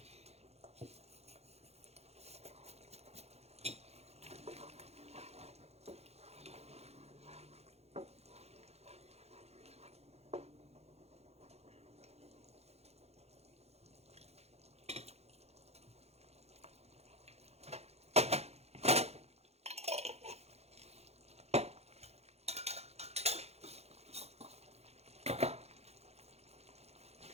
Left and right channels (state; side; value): late; left; 0.31 ms